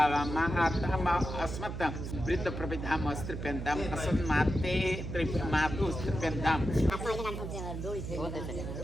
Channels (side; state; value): right; noise; hum, 6 dB below the sound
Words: अस्मत् वृद्ध प्रपिताम अस्त्रिप्यन्ताम असन्माते मातु स्त्रिप्यन्ताम